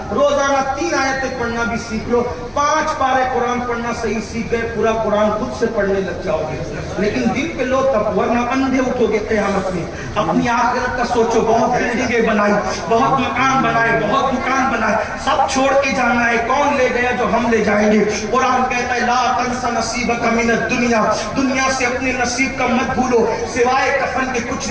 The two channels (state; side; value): identical; both; correlation 1.00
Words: روزانہ 3 آیتیں پڑھنا بھی سیکھ لو, 5 پارے قرآن پڑھنا صحیح سیکھ گئے, پورا قرآن خود سے پڑھنے لگ جاؤ گے. لیکن دل پہ لو تب, ورنہ اندھے اٹھو گے قیامت میں. اپنی آخرت کا سوچو, بہت بلڈنگیں بنائی, بہت مکان بنائے, بہت دکان بنائے, سب چھوڑ کے جانا ہے. کون لے گیا جو ہم لے جائیں گے؟ قرآن کہتا ہے لا تنس نصیبک من الدنیا, دنیا سے اپنے نصیب کا مت بھولو, سوائے کفن کے کچھ